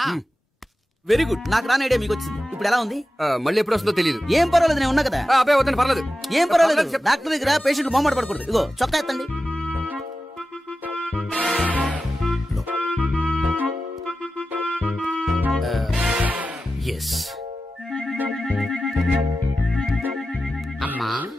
Very good. నాకు రాని ఐడియా మీకు వచ్చింది. ఇప్పుడు ఎలా ఉంది? మళ్ళీ ఎప్పుడు వస్తుందో తెలియదు. ఏం పర్వాలేదు, నేను ఉన్నా కదా. అబ్బాయి వద్దండి, పర్లేదు. ఏం పర్వాలేదు. డాక్టర్ దగ్గర పేషెంట్ మొహమాట పడకూడదు. ఇగో చొక్కా ఎత్తండి. ఎస్. అమ్మా,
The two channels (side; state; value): both; normal; correlation 0.93